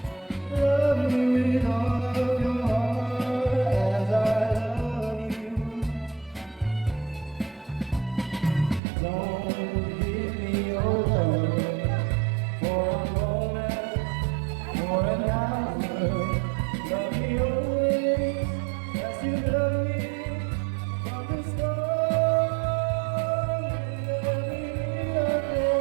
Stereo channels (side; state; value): left; drops out; at 8.8 s